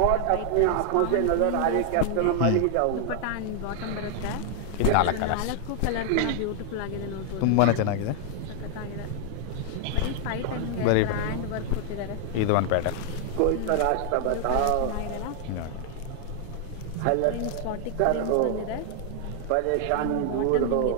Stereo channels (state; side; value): different; both; correlation 0.00